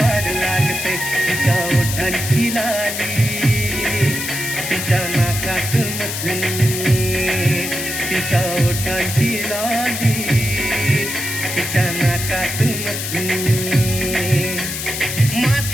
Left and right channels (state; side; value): noise; left; hiss, 4 dB below the sound